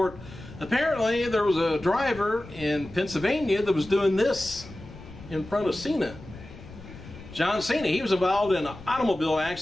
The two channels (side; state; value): left; noise; rumble, 16 dB below the sound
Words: Apparently there was a driver in Pennsylvania that was doing this in front of CENA. John Cena, he was involved in an automobile